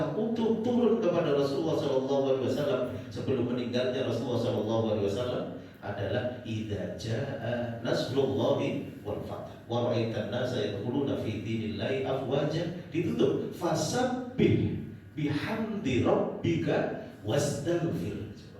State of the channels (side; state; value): both; identical; correlation 1.00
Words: utuh turun kepada Rasulullah SAW sebelum meninggalnya Rasulullah SAW adalah idza jaa nasrullahi wal fath wa ra'aitan nasa yadkhuluna fi dinillahi afwaja, ditutup fasabbih bihamdi rabbika wastaghfir.